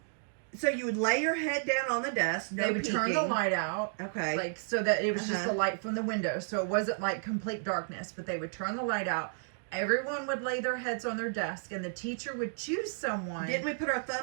you would lay your head down on the desk. No They would peeking. turn the light out. Okay. Like, so that it was just the light from the window. So it wasn't like complete darkness, but they would turn the light out. Everyone would lay their heads on their desk, and the teacher would choose someone. Didn't we put our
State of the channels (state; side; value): silent; left; digital silence